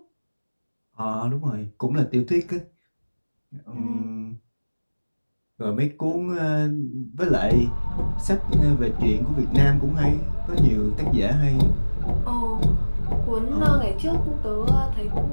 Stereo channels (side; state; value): both; inverted; correlation -1.00